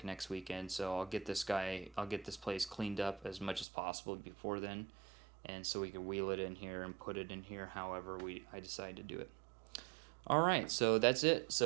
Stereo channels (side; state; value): left; drops out; at 3.7 s